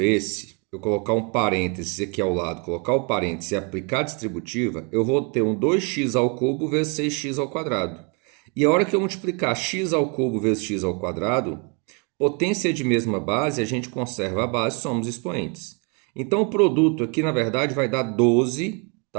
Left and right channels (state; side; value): quieter; left; 34.1 dB